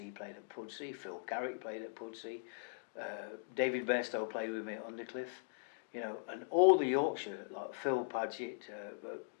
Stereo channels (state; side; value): silent; right; digital silence